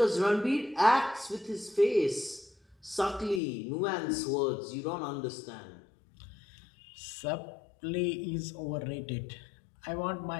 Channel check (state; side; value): drops out; right; at 3.4 s